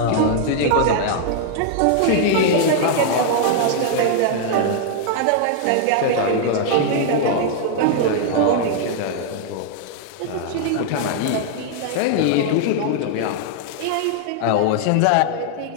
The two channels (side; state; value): both; different; correlation -0.01